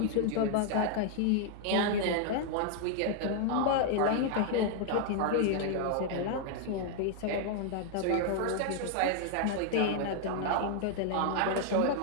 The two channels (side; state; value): both; different; correlation 0.00